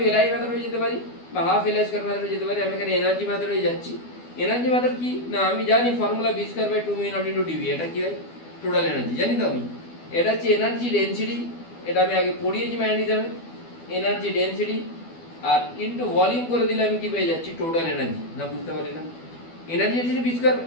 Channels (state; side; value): late; right; 12 ms